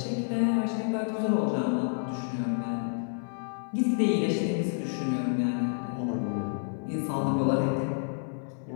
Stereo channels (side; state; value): right; silent; 58 dB below the other